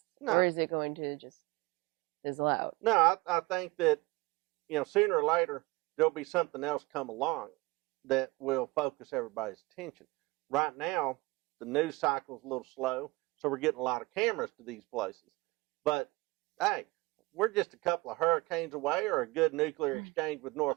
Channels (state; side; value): quieter; left; 23.4 dB